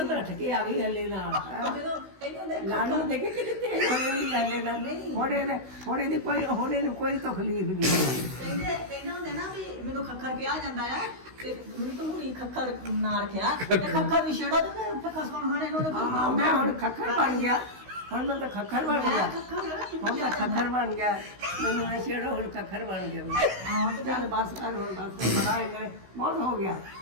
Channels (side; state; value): left; late; 16 ms